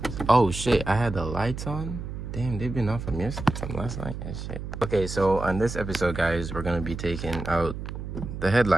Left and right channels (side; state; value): right; noise; hum, 7 dB below the sound